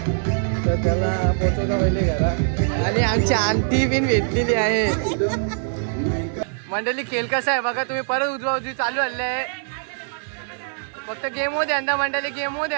तर त्याला पोचवता पहिले घरा आणि आमची आंटी बिन भेटलेली आहे मंडळी खेळ कसा आहे बघा तुम्ही परत उजवा उजवी चालू आले आहे फक्त गेम मध्ये आणता मंडळी गेम मध्ये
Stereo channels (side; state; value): left; silent; digital silence